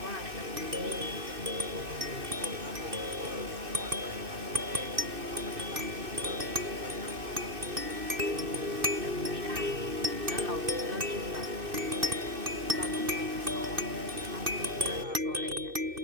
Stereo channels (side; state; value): left; late; 2.6 ms